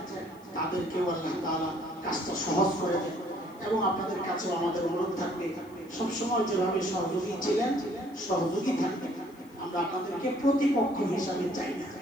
তাদেরকেও আল্লাহ তাআলা কাজটা সহজ করে দেন। এবং আপনাদের কাছেও আমাদের অনুরোধ থাকবে, সবসময় যেভাবে সহযোগী ছিলেন সহযোগী থাকবেন। আমরা আপনাদেরকে প্রতিপক্ষ হিসাবে চাই না,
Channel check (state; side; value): noise; left; hiss, 28 dB below the sound